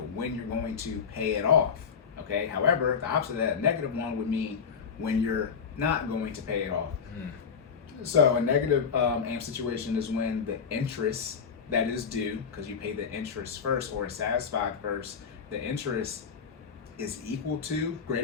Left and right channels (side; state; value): right; quieter; 6.5 dB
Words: when you're going to pay it off. Okay, however, the opposite of that negative one would mean when you're not going to pay it off. So a negative am situation is when the interest that is due, because you pay the interest first or is satisfied first, the interest is equal to,